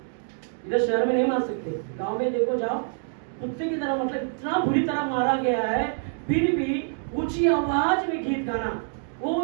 इधर शहर में नहीं मार सकते, गांव में देखो जाओ, कुत्ते की तरह, मतलब इतना बुरी तरह मारा गया है। फिर भी ऊंची आवाज में गीत गाना,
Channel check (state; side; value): silent; left; 61 dB below the other